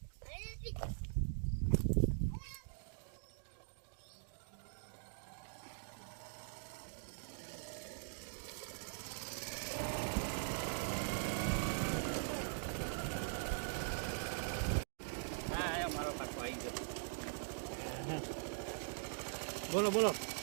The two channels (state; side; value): silent; left; digital silence